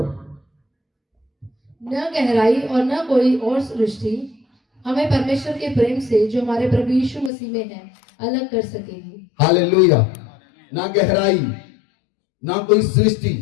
न गहराई और न कोई और सृष्टि हमें परमेश्वर के प्रेम से जो हमारे प्रभु यीशु मसीह में है अलग कर सकेगी। हालेलुया। ना गहराई, ना कोई सृष्टि,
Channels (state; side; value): drops out; right; at 7.3 s